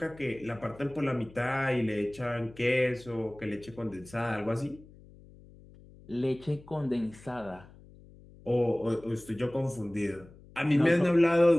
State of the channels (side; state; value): left; noise; hum, 22 dB below the sound